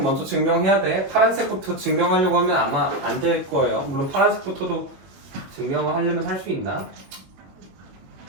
먼저 증명해야 돼. 파란색부터 증명하려고 하면 아마 안 될 거예요. 물론 파란색부터도 증명을 하려면 할 수 있나?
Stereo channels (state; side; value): late; left; 21 ms